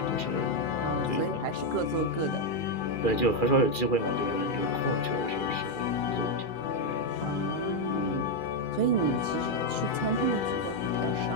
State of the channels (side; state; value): right; late; 2.4 ms